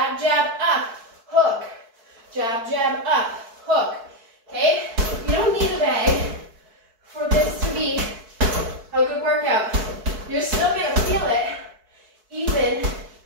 jab, up, hook. Jab, jab, up, hook. Okay? You don't need a bag for this to be a good workout. You're still going to feel it, even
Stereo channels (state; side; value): late; left; 4.6 ms